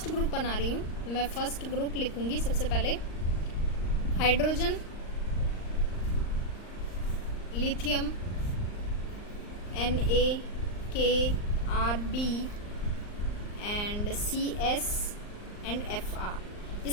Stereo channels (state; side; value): late; right; 39 ms